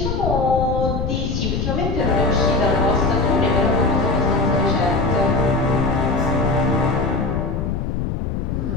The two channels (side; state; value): left; noise; rumble, 2 dB below the sound